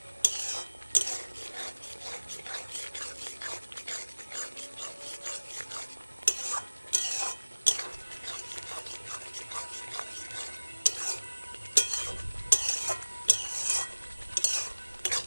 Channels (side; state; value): both; inverted; correlation -1.00